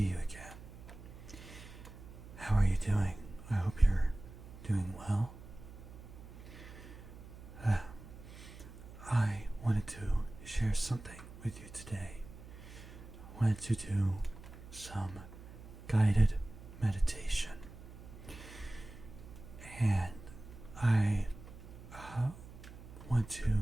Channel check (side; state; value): right; noise; hum, 15 dB below the sound